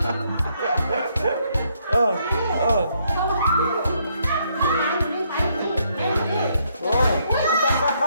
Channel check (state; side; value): inverted; both; correlation -0.72